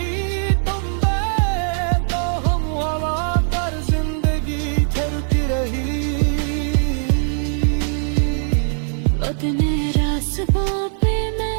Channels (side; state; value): left; silent; 65 dB below the other